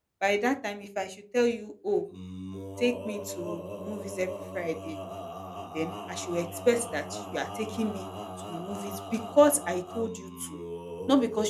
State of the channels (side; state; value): both; identical; correlation 1.00